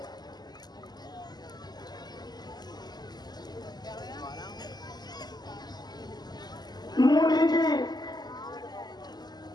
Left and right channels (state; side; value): late; right; 0.20 ms